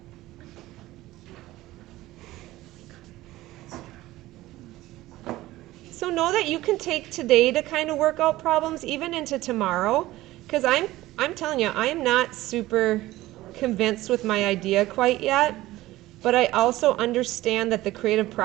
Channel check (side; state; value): left; quieter; 17.0 dB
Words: So know that you can take today to kind of work out problems even into tomorrow, because I'm telling you, I am not super convinced with my idea quite yet, but I also understand that the creative